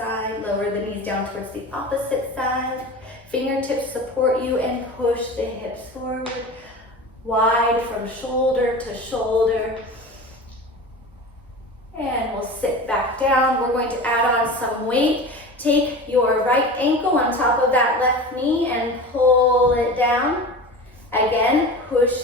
Lower the knees down towards the opposite side. Fingertips support you and push the hips forward. wide from shoulder to shoulder. And we'll sit back down. We're going to add on some weight. Take your right ankle on top of that left knee and pull it down. Again, push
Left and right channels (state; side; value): normal; both; correlation 0.32